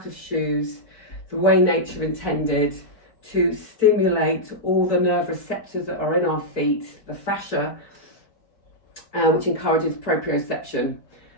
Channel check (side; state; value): right; late; 4.6 ms